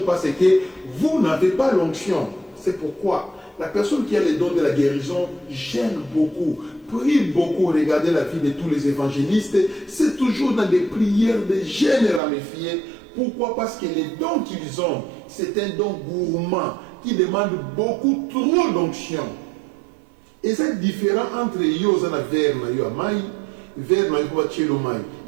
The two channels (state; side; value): drops out; left; at 12.2 s